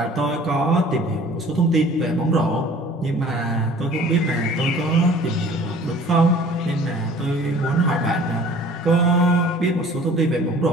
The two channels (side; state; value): both; normal; correlation 0.49